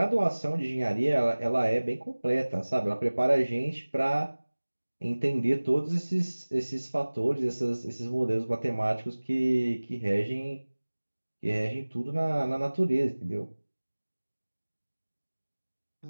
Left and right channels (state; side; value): inverted; both; correlation -1.00